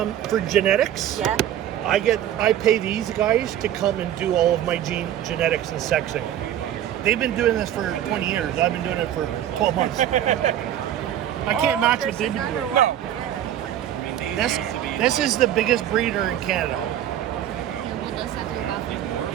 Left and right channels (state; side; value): quieter; left; 11.3 dB